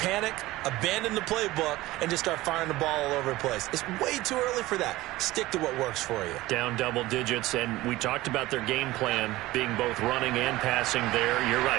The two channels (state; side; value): quieter; left; 18.0 dB